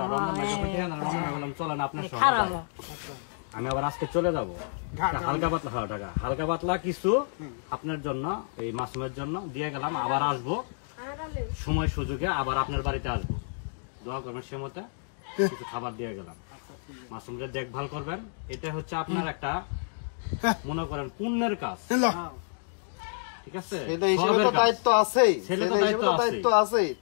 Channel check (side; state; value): right; silent; digital silence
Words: রমজান ভাই যখন ঠিকানা রমজান ভাই বললাম চলেন আপনার সঙ্গে যাই, আমি আবার আজকে চলে যাবো হালকা পাতলা, হ্যাঁ ঢাকা, হালকা পাতলা কিছু আপনার জন্য, এই মাসুমের জন্য দিয়ে গেলাম। আবার আসবো সময় সুযোগে, আবার আপনার বাড়িতে আসবো, দোয়া করবেন সে মতে কিছু খাবার দিয়ে গেলাম। মাসুমকে দেখভাল করবেন, এটা হচ্ছে আপনার একটা মনে করেন পুণ্যের কাজ, ঠিক আছে? দায়িত্ব আছে, দায়িত্ব আছে।